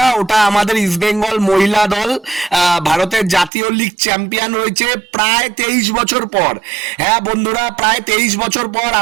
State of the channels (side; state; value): left; drops out; at 3.5 s